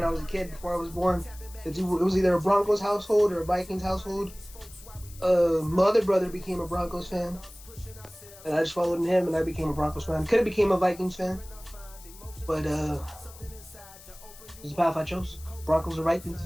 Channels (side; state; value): left; noise; hiss, 20 dB below the sound